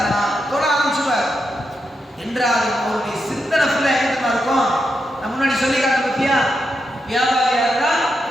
தொழ ஆரம்பிச்சுவார். என்றாலும் அவருடைய சிந்தனை ஃபுல்லா எங்க இருக்கும், நம்ம முன்னாடி சொல்லி காட்ட பத்தியா, வியாபாரியா இருந்தா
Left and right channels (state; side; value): normal; both; correlation 0.85